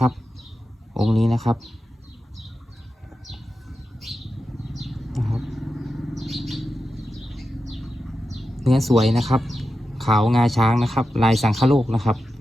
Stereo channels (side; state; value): both; normal; correlation 0.91